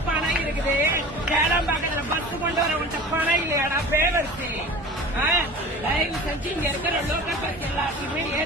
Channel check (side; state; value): both; normal; correlation 0.39